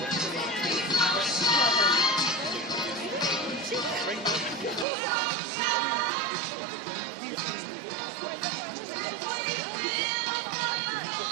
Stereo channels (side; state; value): left; drops out; at 4.9 s